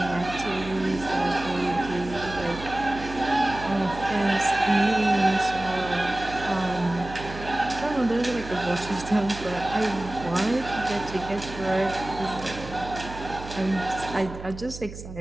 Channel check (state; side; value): noise; right; hum, 12 dB below the sound